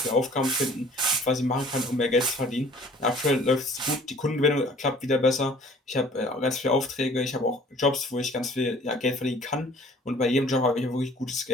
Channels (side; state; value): both; normal; correlation 0.52